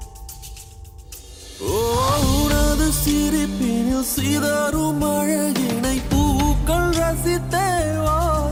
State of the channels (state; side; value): identical; both; correlation 1.00